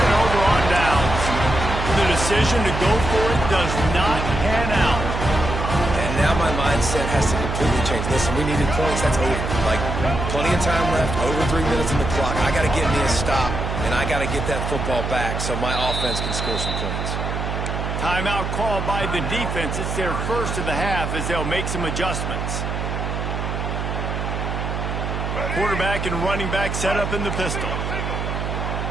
over on downs. The decision to go for it does not pan out. And now my mindset has to completely change. Listen, we needed points. That's over. Like, plenty of time left, over 3 minutes on the clock. I got to get me a stop, and I got to get that football back so my offense can score some points. Timeout called by the defense. It's their first of the half as they'll make some adjustments. Quarterback and running back set up in the pistol.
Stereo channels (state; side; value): noise; right; hum, 3 dB below the sound